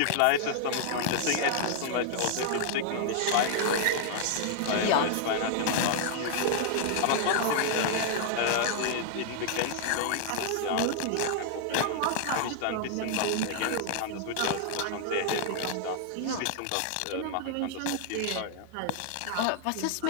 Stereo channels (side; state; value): both; different; correlation -0.01